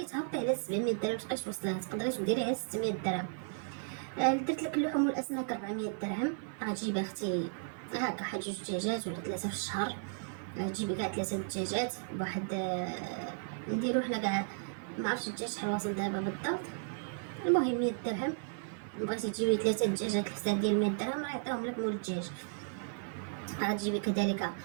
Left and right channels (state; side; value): silent; left; 55 dB below the other